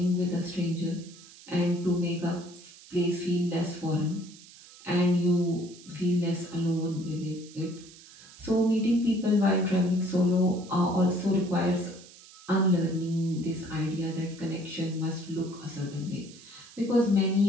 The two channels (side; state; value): right; noise; hiss, 21 dB below the sound